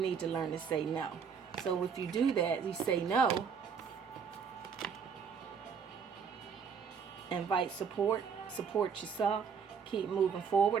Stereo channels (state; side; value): quieter; left; 6.5 dB